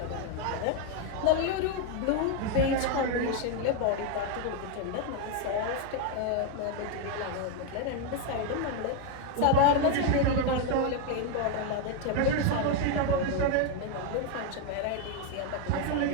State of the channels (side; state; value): both; different; correlation 0.01